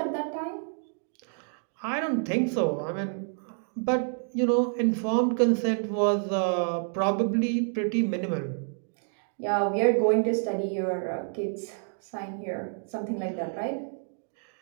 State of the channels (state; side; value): silent; left; digital silence